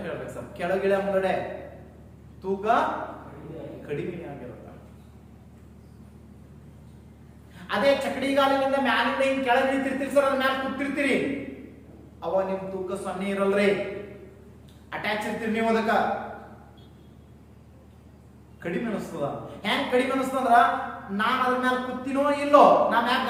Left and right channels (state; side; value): identical; both; correlation 1.00